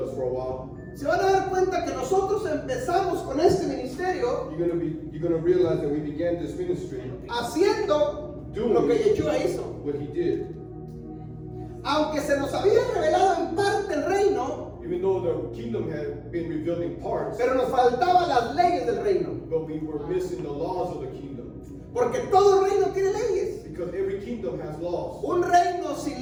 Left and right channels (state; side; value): identical; both; correlation 1.00